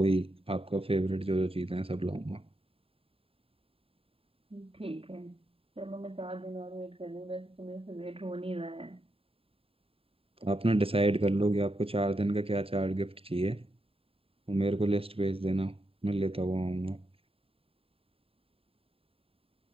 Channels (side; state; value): left; late; 0.27 ms